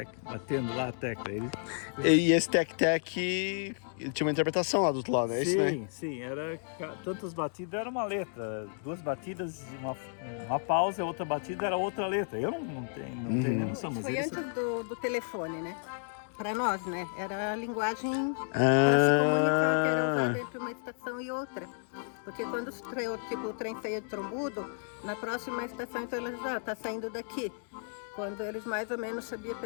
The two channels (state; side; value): silent; right; 56 dB below the other